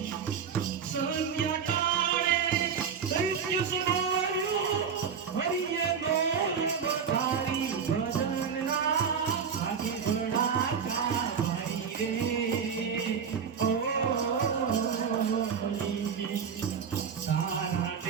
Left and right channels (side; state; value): left; quieter; 6.8 dB